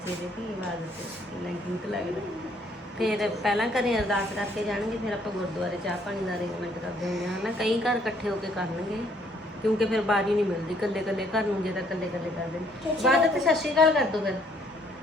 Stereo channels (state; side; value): normal; both; correlation 0.65